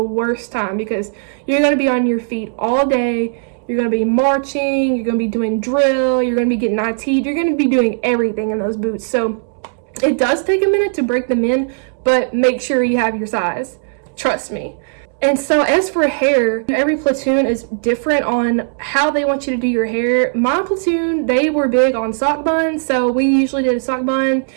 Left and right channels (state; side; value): silent; left; 68 dB below the other